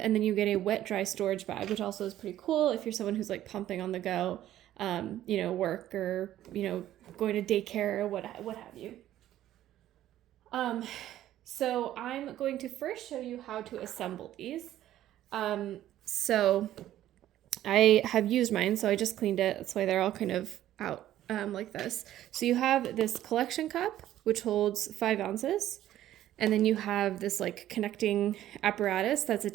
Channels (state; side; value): quieter; left; 12.9 dB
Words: and then you get a wet dry storage bag, which also is pretty cool if you're someone who's like pumping on the go, work or going to daycare or what have you. So I'm going to first show you how to assemble these. So I have used mine, so I just cleaned it. That's why they're all kind of out like this. So you have this collection cup, which holds 5 ounces. And then you have this like connecting apparatus that's